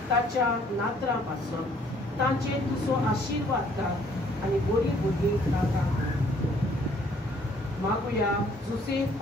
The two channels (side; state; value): both; normal; correlation 0.62